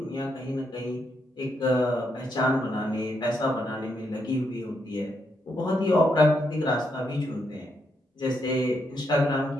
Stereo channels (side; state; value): both; normal; correlation 0.79